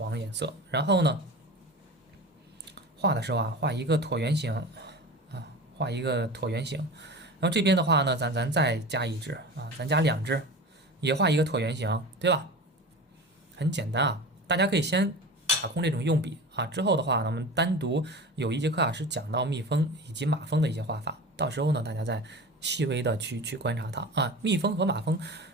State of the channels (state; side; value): normal; both; correlation 0.32